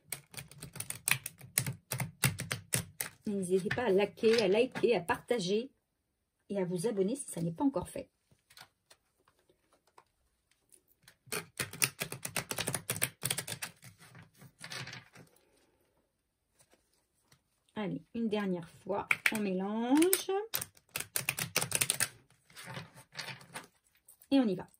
N'hésitez pas à liker, à partager et à vous abonner si ça n'est pas encore fait. Allez, une dernière fois, on mélange. Et on y va.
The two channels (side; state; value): both; identical; correlation 1.00